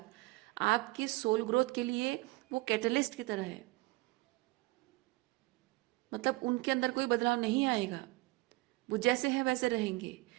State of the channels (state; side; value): quieter; left; 22.3 dB